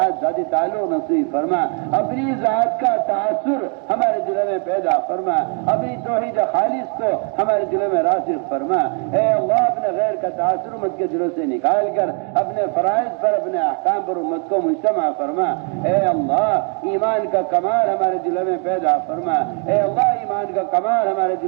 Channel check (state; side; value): quieter; left; 40.0 dB